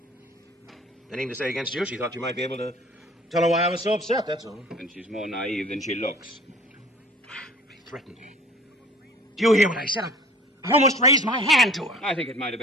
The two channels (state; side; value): normal; both; correlation 0.47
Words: Anything to say against you, she thought you might be able to tell her why I was so upset, that's all. And she's more naive than she looks. He threatened me. Do you hear what I said? I almost raised my hand to her. I think it might have